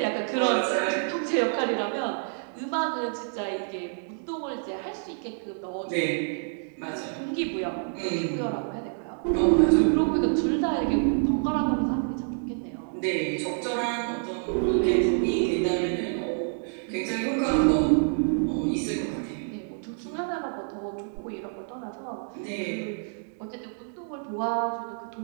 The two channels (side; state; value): left; silent; digital silence